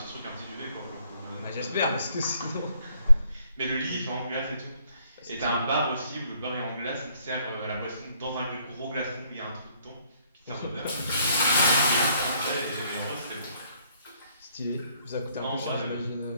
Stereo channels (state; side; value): inverted; both; correlation -0.66